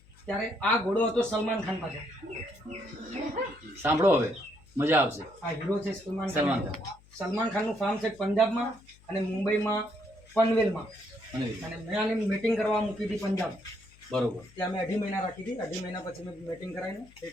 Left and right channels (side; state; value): left; noise; hum, 26 dB below the sound